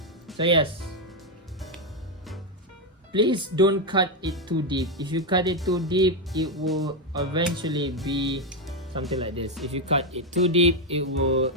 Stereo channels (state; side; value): normal; both; correlation 0.05